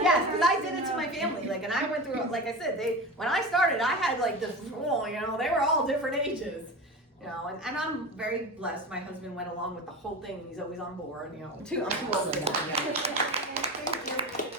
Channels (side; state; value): both; normal; correlation 0.28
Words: did it to my family, and I went through, like I said, when I started, I had this rule, they were all different ages, and I'm very blessed. My husband went along with the whole thing, he's always on board, I'm too old for that,